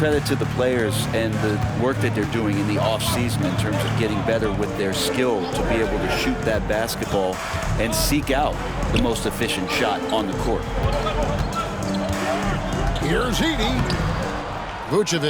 to the players and the work that they're doing in the offseason in terms of getting better with their skill to be able to shoot that basketball and seek out the most efficient shot on the court. Here's Edey.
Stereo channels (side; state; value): both; identical; correlation 1.00